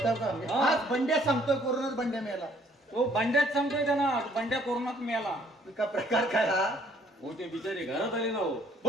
का हा. आज बंड्या सांगतोय कोरोनात बंड्या मेला. तो बंड्यात सांगतोय त्यांना बंड्या कोरोनात मेला. का प्रकार काय हा. हो ते बिचारे घरात आले ना हो.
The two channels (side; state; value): both; normal; correlation 0.62